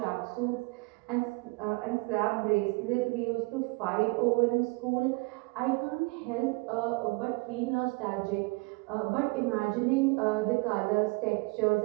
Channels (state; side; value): quieter; left; 28.0 dB